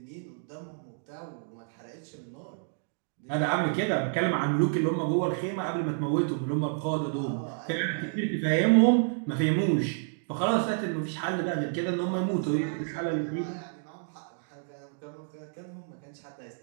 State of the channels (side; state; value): left; silent; digital silence